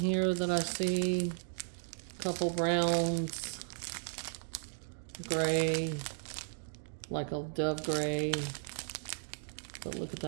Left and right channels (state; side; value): silent; left; digital silence